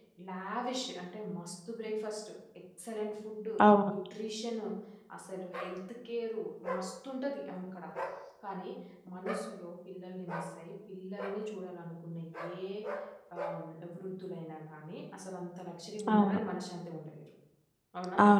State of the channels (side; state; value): both; identical; correlation 1.00